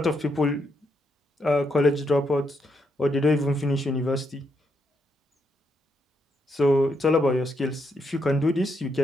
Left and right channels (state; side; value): normal; both; correlation 0.78